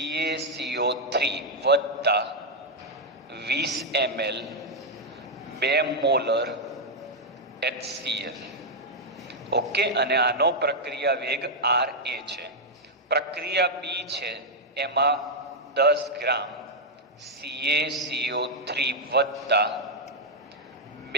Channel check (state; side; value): normal; both; correlation -0.02